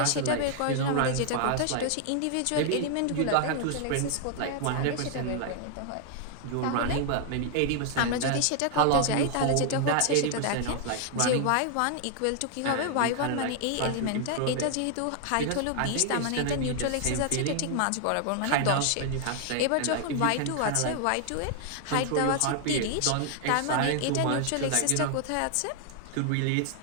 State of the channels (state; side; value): different; both; correlation 0.00